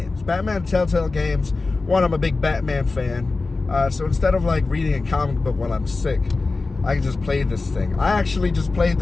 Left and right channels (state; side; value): quieter; right; 3.7 dB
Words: Batman the Telltale games one, I'm a big Batman fan. So instead of like reading a comic book while I'm sick, I can just play this thing. I actually just played